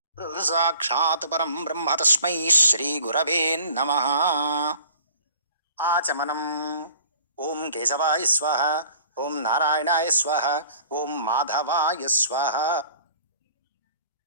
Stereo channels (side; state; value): both; inverted; correlation -0.50